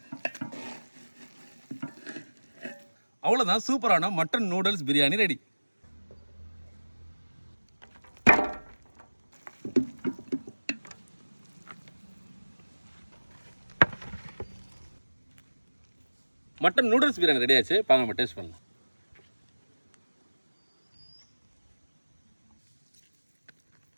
அவ்வளோதான், சூப்பரான mutton noodles biryani ready. Mutton noodles biryani ready ஆச்சு. பாங்க நம்ம டேஸ்ட் பண்ணலாம்.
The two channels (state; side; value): inverted; both; correlation -1.00